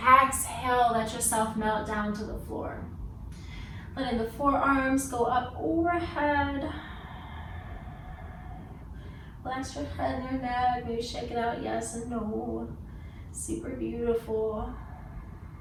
let yourself melt down to the floor. Letting the forearms go up overhead. Relax your head and your neck. Maybe shake it out, yes and no. Super beautiful.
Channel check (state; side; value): identical; both; correlation 1.00